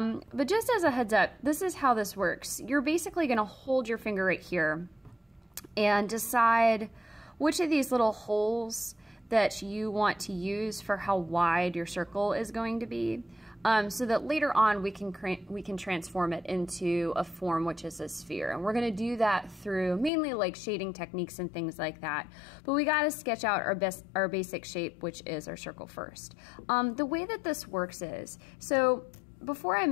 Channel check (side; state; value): right; drops out; at 20.1 s